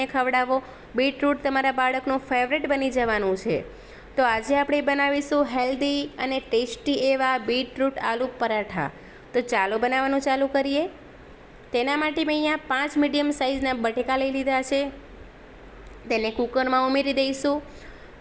ખવડાવો। બીટરૂટ તમારા બાળકનું ફેવરેટ બની જવાનું છે। તો આજે આપણે બનાવીશું હેલ્ધી અને ટેસ્ટી એવા બીટરૂટ આલુ પરાઠા। તો ચાલો બનાવવાનું ચાલુ કરીએ। તેના માટે મેં અહીંયા 5 મીડિયમ સાઇઝના બટેકા લઈ લીધા છે। તેને કુકરમાં ઉમેરી દઈશું।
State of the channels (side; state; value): both; identical; correlation 1.00